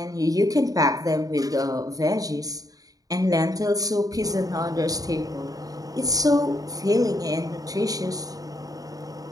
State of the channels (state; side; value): late; left; 0.18 ms